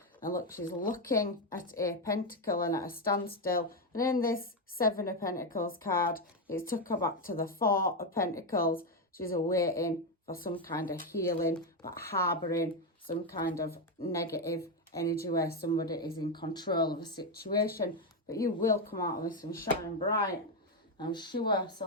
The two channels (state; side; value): normal; both; correlation 0.07